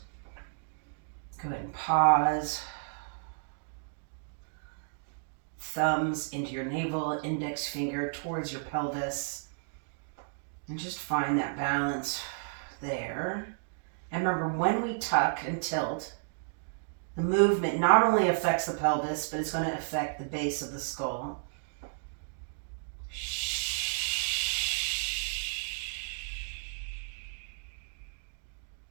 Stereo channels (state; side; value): silent; left; digital silence